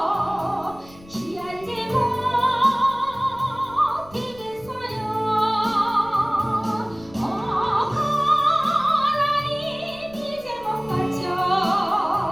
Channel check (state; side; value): noise; left; rumble, 22 dB below the sound